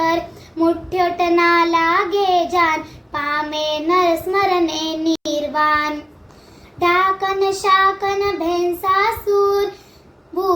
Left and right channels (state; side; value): identical; both; correlation 1.00